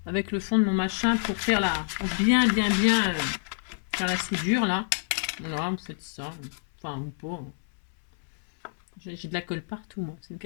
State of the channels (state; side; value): silent; right; 59 dB below the other